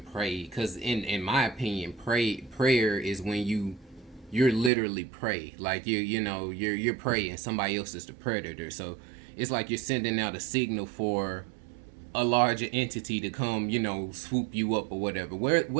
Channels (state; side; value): drops out; left; at 4.7 s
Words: pray, because in my opinion, prayer is when you're literally pray, like you're praying, somebody else is the predator. So it's like you're sending out a signal for a larger entity to come, swoop you up or whatever.